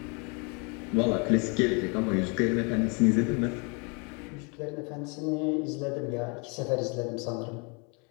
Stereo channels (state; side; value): quieter; right; 32.8 dB